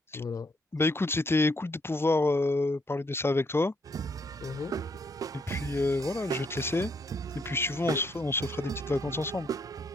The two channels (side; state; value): both; normal; correlation 0.72